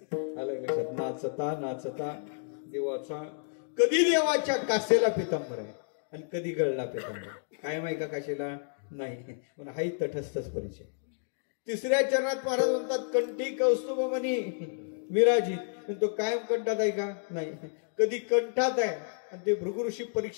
आलं लक्षात. नाचता नाचता देवाचा कधी देवाच्या कासेला पितांबर आहे आणि कधी गळला पितांबर. कायम आहे का काशेला? नाही. पण हाही तटस्थच परिचय. तिसऱ्या चरणात महाराज म्हणतात कंठी कौस्तुभमणी विराजित. तो कायम कंठात आहे का? नाही. कधी कंठात आहे आणि ते भृगु ऋषी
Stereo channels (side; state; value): right; silent; digital silence